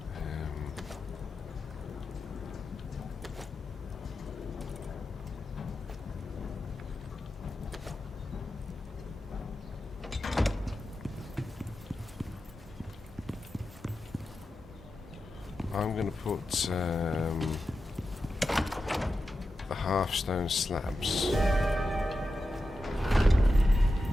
I'm going to put the half-stone slabs.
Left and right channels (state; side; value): normal; both; correlation 0.91